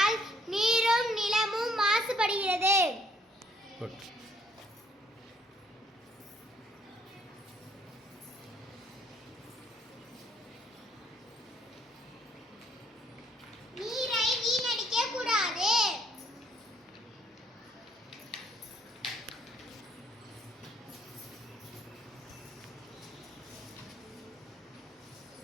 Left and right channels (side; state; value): both; normal; correlation 0.65